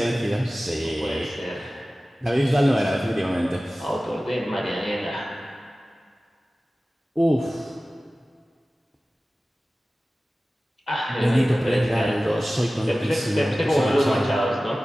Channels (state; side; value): normal; both; correlation 0.96